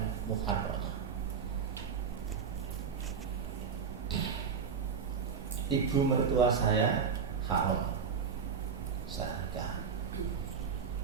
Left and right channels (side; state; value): left; quieter; 6.4 dB